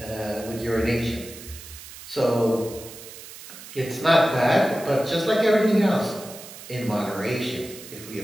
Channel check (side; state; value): right; noise; hiss, 15 dB below the sound